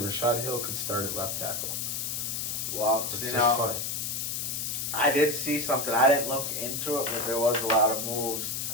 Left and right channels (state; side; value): noise; left; hiss, 2 dB below the sound